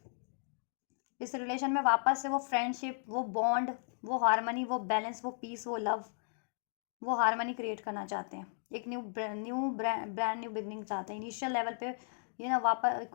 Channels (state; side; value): silent; right; digital silence